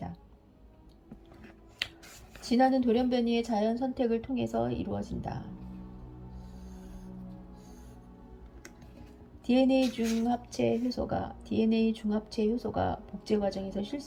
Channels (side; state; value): both; identical; correlation 1.00